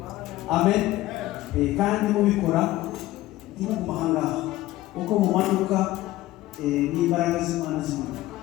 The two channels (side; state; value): right; quieter; 16.4 dB